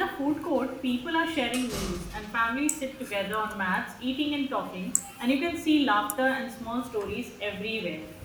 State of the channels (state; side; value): identical; both; correlation 1.00